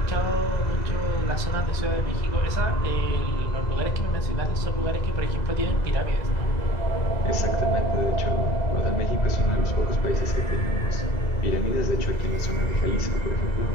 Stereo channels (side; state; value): right; late; 2.0 ms